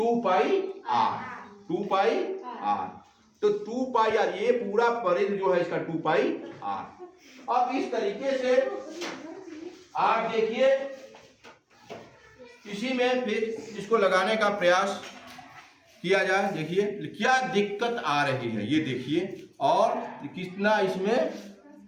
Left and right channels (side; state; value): both; identical; correlation 1.00